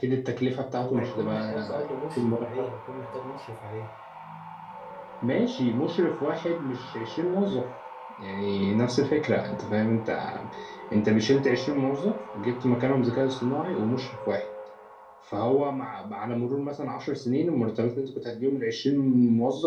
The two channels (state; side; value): identical; both; correlation 1.00